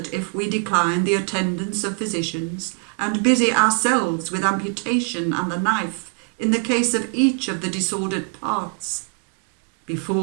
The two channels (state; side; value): quieter; left; 38.7 dB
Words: if we decline the attendance of physicians and busy ourselves with amputation and the knife in the case of each of the disordered parts,